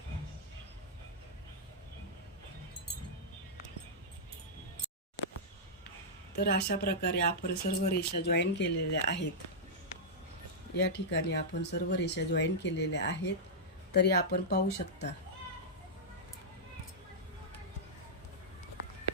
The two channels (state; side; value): normal; both; correlation -0.09